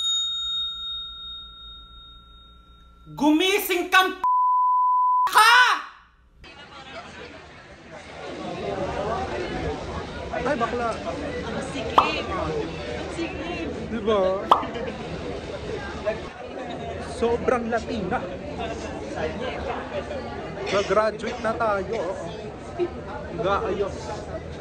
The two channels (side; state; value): both; identical; correlation 1.00